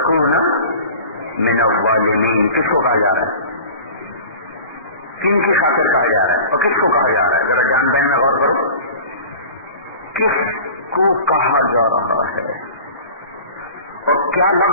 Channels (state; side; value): inverted; both; correlation -0.39